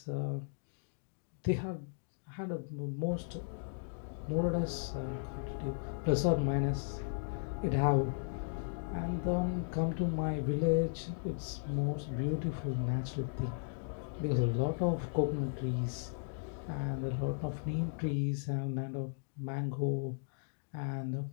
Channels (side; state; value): right; silent; digital silence